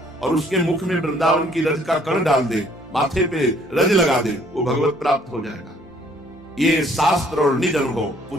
और उसके मुख में वृंदावन की रज का कण डाल दे माथे पे रज लगा दे, वो भगवत प्राप्त हो जाएगा। ये शास्त्र और निज अनुभव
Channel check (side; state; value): both; normal; correlation 0.61